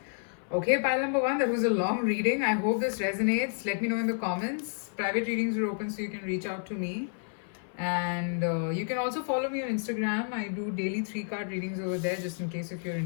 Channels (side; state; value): right; silent; 56 dB below the other